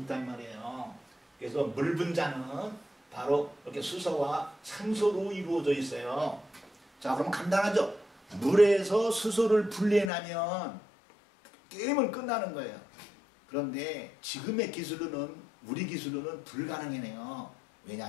말이에요. 그래서 물 분자는 바로 이렇게 수소와 산소로 이루어져 있어요. 자, 그럼 간단하죠? 물에서 수소를 분리해내면 게임은 끝나는 거예요. 그런데 지금의 기술로는 우리 기술로는 불가능해요.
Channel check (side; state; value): right; drops out; at 10.1 s